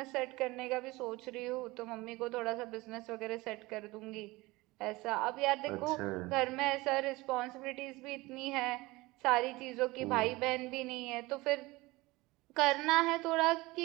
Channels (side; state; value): left; quieter; 21.4 dB